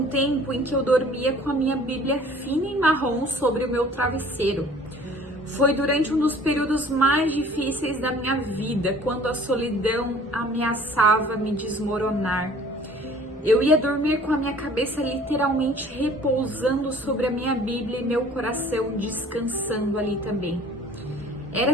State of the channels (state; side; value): normal; both; correlation 0.51